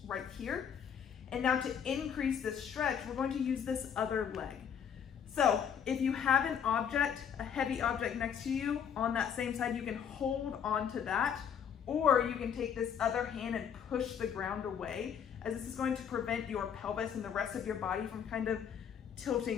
right here. And now to increase this stretch, we're going to use this other leg. So if you have an object, a heavy object next to you on that same side, you can hold onto that, or you can take this other hand and push the ground away, as this is going to prevent your pelvis and the rest of your body from kind of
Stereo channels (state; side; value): quieter; right; 8.0 dB